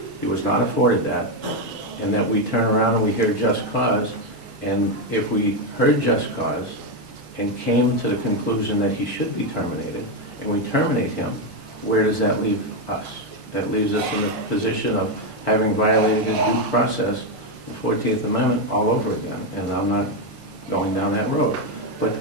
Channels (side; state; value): left; late; 2.5 ms